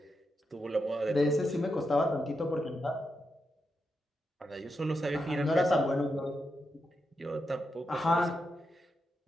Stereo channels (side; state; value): both; normal; correlation 0.85